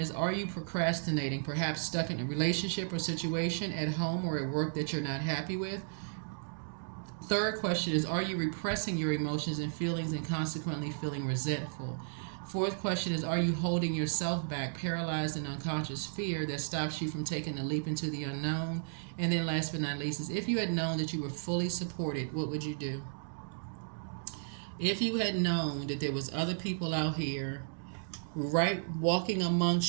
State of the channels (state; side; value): silent; left; digital silence